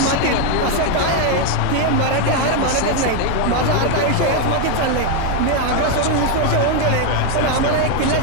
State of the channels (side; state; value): both; different; correlation 0.01